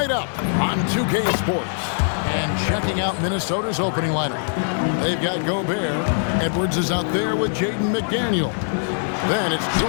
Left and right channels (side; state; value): right; silent; digital silence